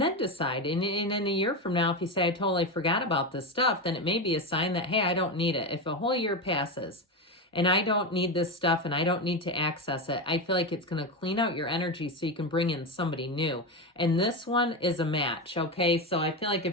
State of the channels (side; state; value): both; normal; correlation 0.15